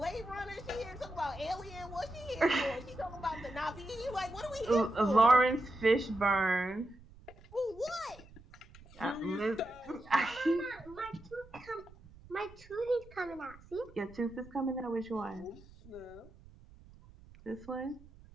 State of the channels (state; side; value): noise; right; rumble, 21 dB below the sound